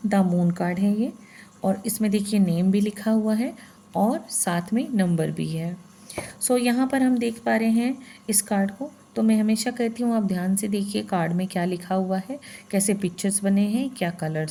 द मून कार्ड है ये, और इसमें देखिए नेम भी लिखा हुआ है और साथ में नंबर भी है। यहाँ पर हम देख पा रहे हैं इस कार्ड को। तो मैं हमेशा कहती हूँ आप ध्यान से देखिए कार्ड में क्या लिखा हुआ है, कैसे पिक्चर्स बने हैं, क्या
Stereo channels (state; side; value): identical; both; correlation 1.00